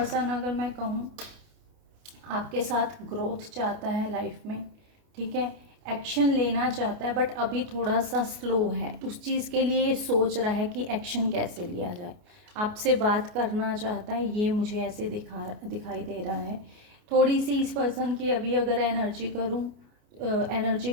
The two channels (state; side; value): late; left; 28 ms